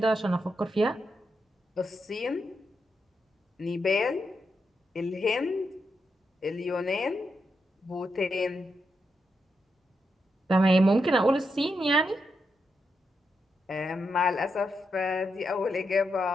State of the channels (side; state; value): both; normal; correlation 0.84